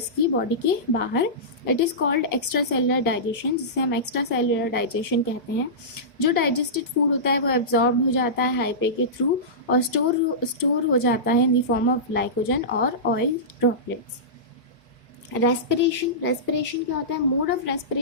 की बॉडी के बाहर. It is called extra cellular digestion, जिसे हम एक्स्ट्रा सेलुलर डाइजेशन कहते हैं. जो डाइजेस्टेड फूड होता है वो एब्जॉर्ब हो जाता है हाइपे के थ्रू और स्टोर हो जाता है in the form of glycogen और ऑयल ड्रॉपलेट्स. रेस्पिरेशन क्या होता है? Mode of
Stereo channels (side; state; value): both; normal; correlation -0.18